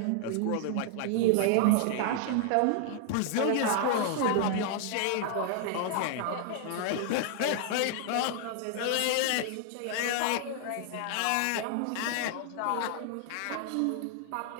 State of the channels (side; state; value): both; different; correlation 0.00